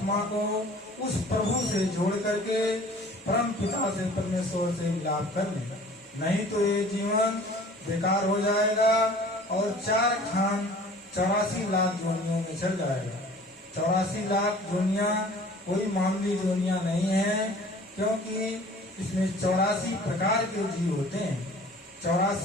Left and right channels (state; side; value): normal; both; correlation 0.47